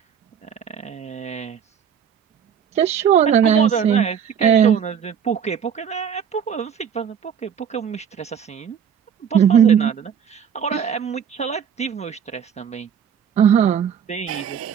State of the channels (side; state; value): left; quieter; 8.0 dB